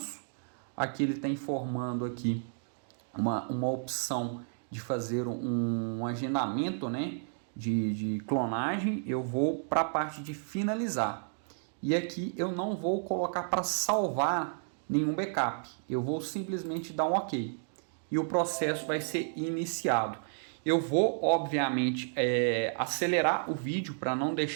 aqui ele está informando aqui uma opção de fazer um agendamento, né, de clonagem. Eu vou para a parte de finalizar. E aqui eu não vou colocar para salvar nenhum backup. Eu vou simplesmente dar um OK. E o processo vai ser iniciado. Eu vou, obviamente, acelerar o vídeo para não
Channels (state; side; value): silent; left; digital silence